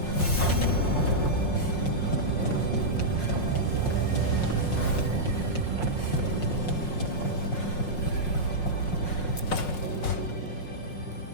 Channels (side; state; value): right; late; 5.5 ms